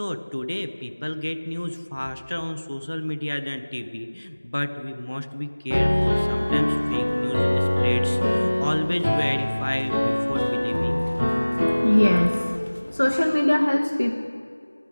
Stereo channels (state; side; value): inverted; both; correlation -1.00